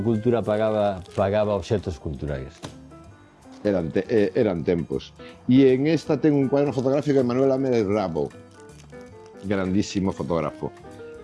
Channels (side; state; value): both; identical; correlation 1.00